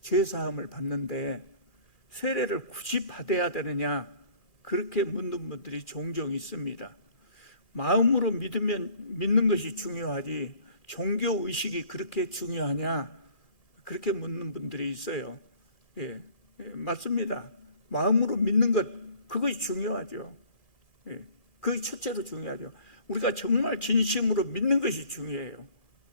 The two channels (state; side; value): late; right; 1.7 ms